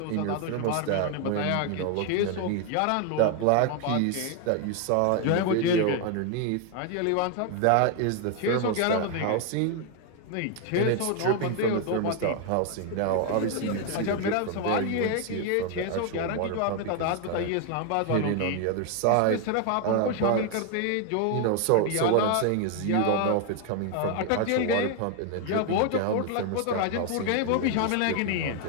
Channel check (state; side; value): different; both; correlation 0.01